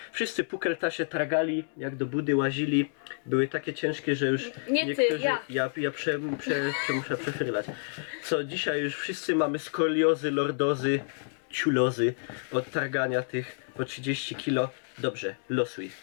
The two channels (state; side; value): silent; right; 59 dB below the other